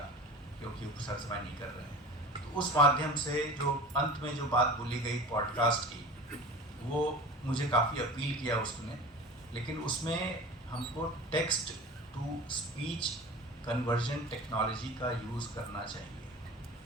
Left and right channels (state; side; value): normal; both; correlation 0.36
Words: क्योंकि वो सर समय नहीं कर रहे हैं। तो उस माध्यम से जो अंत में जो बात बोली गई पॉडकास्ट की, वो मुझे काफ़ी अपील किया उसने, लेकिन उसमें हमको text to speech conversion technology का यूज़ करना चाहिए।